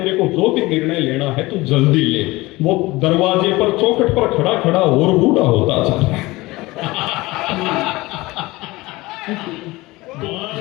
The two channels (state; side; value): quieter; right; 20.7 dB